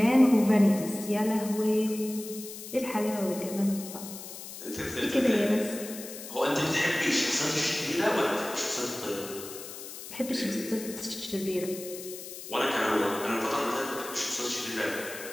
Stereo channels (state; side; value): noise; left; hiss, 12 dB below the sound